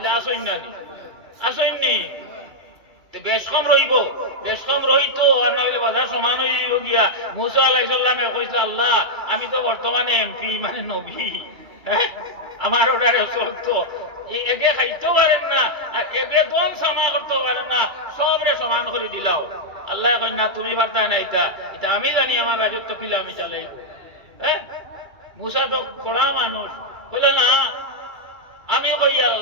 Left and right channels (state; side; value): late; left; 2.3 ms